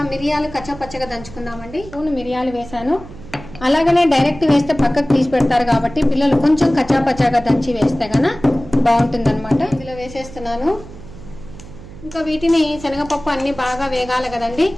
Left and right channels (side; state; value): right; noise; hum, 16 dB below the sound